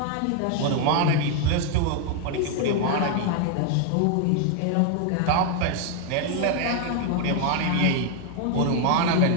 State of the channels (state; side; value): different; both; correlation 0.00